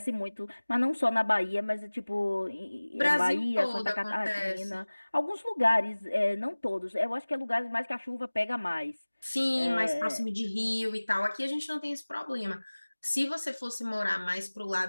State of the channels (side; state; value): both; inverted; correlation -1.00